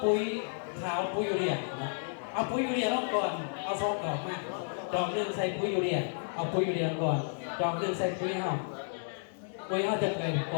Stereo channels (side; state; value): right; silent; digital silence